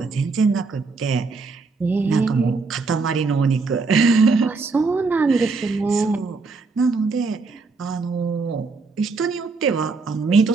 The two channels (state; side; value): quieter; left; 4.2 dB